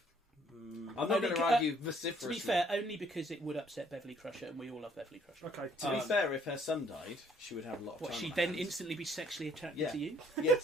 I'm not Only going to c- argue To vociferously. be fair, only because it would upset Beverly Crusher, and we all love Beverly Crusher. Okay. To be fair, if her son died, she would have a lot of What, time. she'd on her then hands. instantly be sexually attracted Yeah. to you?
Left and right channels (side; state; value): both; normal; correlation 0.63